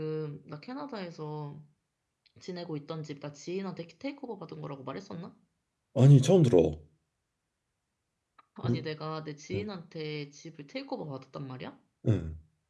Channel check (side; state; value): both; identical; correlation 1.00